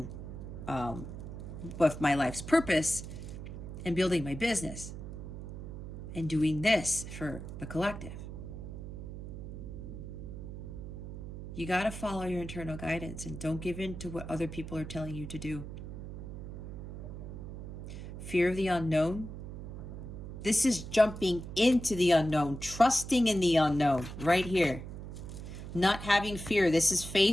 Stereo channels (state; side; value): noise; right; hum, 9 dB below the sound